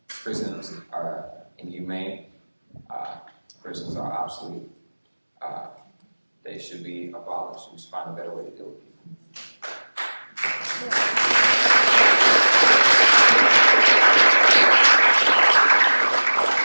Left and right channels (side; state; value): both; inverted; correlation -1.00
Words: Prisons are inhumane. Prisons are obsolete. They should be abolished. We should find a better way to deal with people.